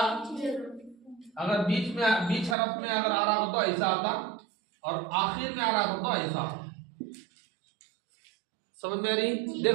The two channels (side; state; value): left; drops out; at 2.6 s